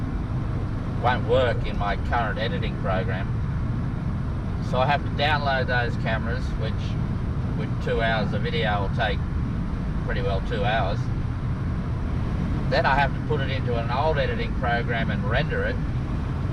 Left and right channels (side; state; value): both; identical; correlation 1.00